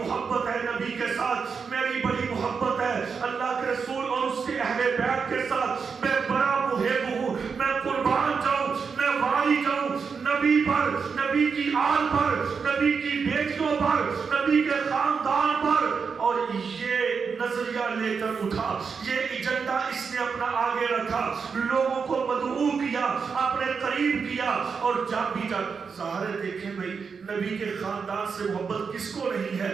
ہے نبی کے ساتھ، میری بڑی محبت ہے اللہ کے رسول اور اس کے اہل بیت کے ساتھ، میں بڑا محب ہوں، میں قربان جاؤں، میں والی جاؤں نبی پر، نبی کی آل پر، نبی کی بیٹیوں پر، نبی کے خاندان پر۔ اور یہ نظریہ لے کر اٹھا، یہ ایجنڈا اس نے اپنا آگے رکھا، لوگوں کو مدعو کیا، اپنے قریب کیا، اور جب بھی جب ظاہر دیکھیں بھئی نبی کے خاندان سے محبت کس کو نہیں ہے؟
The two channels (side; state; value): left; quieter; 5.7 dB